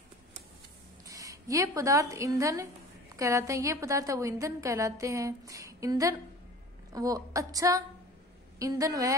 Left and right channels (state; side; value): normal; both; correlation 0.41